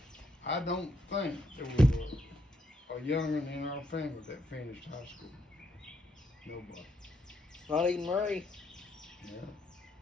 I don't think there was a young'un in our family that finished high school. Nobody. Not even Ray?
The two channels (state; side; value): normal; both; correlation 0.75